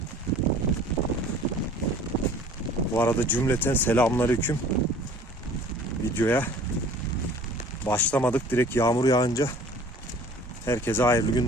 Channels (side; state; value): both; normal; correlation 0.49